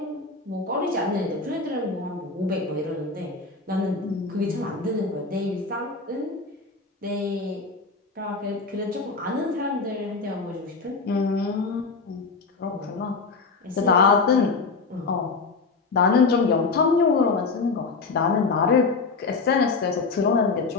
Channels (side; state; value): right; quieter; 4.2 dB